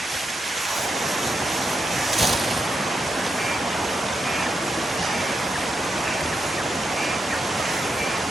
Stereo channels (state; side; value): normal; both; correlation 0.84